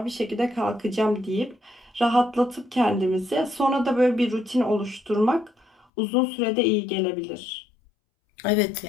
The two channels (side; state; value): right; drops out; at 5.9 s